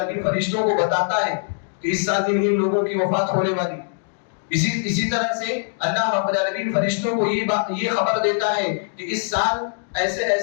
فرشتوں کو بتاتا ہے کہ اس سال ان لوگوں کی وفات ہونے والی. اسی طرح سے اللہ رب العالمین فرشتوں کو یہ خبر دیتا ہے کہ اس سال ایسے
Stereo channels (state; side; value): silent; right; digital silence